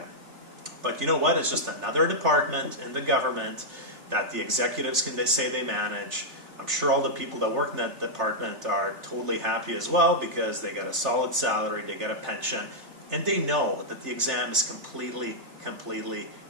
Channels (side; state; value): left; late; 3.3 ms